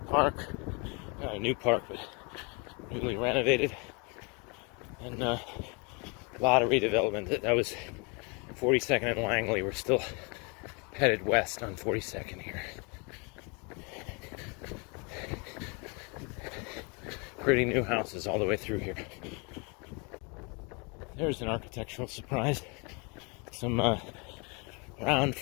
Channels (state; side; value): quieter; right; 31.9 dB